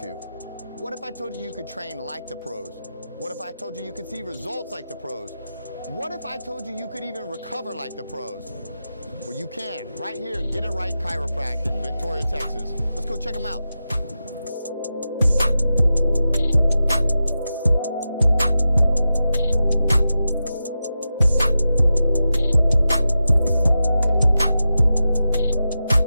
to? What if I told you you could train like the pros? What if I told you you could see results like the pros? What if I told you you could even recover like the pros? Well, you can, right here at Get It Right Chiropractic in Victoria, Texas. Let's go check them out.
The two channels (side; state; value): both; inverted; correlation -0.91